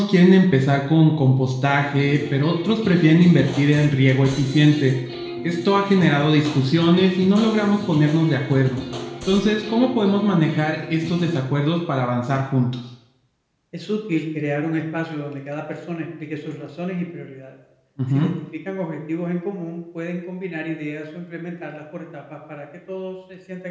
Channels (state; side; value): identical; both; correlation 1.00